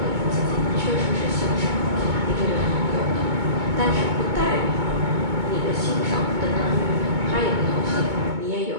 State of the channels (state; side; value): late; left; 2.2 ms